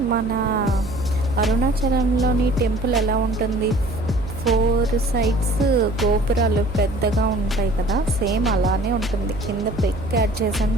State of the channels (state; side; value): noise; right; hum, 11 dB below the sound